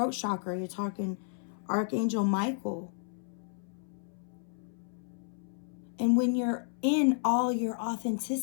chakra, you're talking Archangel Michael. And when you're in all your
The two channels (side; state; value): right; silent; 56 dB below the other